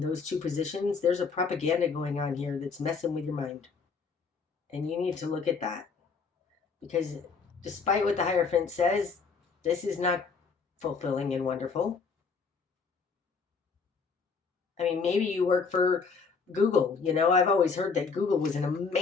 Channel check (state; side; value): quieter; right; 5.1 dB